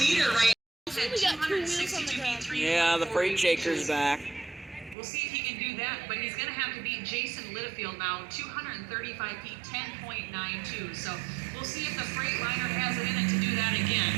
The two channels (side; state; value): left; drops out; at 5.0 s